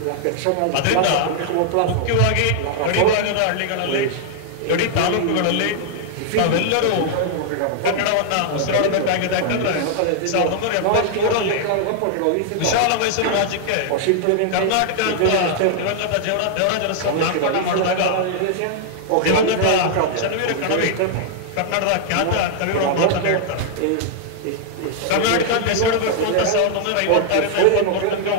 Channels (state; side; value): different; both; correlation -0.01